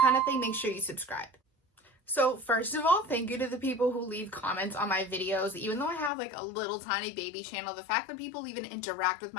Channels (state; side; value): drops out; right; at 6.1 s